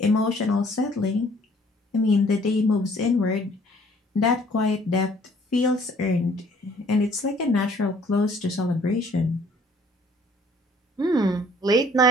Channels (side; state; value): both; normal; correlation 0.58